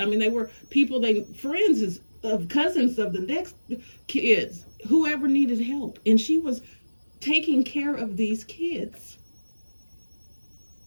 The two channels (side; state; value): both; inverted; correlation -1.00